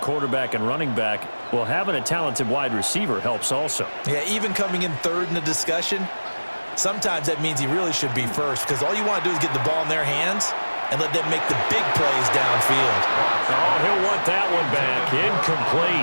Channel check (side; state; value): both; inverted; correlation -1.00